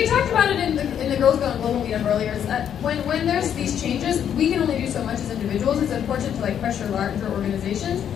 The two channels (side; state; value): right; quieter; 9.1 dB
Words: talked about it in the Girls Gone Global meetup earlier, is that when there's these changes, we can only do so much as individuals. It's important to like pressure larger organizations,